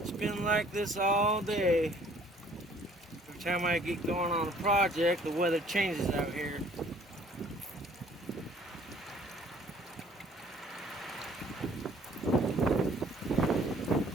been like this all day. Every time I get going on a project, the weather changes out here.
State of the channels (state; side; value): normal; both; correlation 0.57